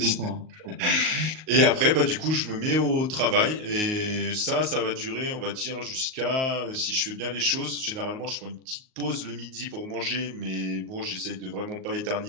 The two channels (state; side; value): late; left; 38 ms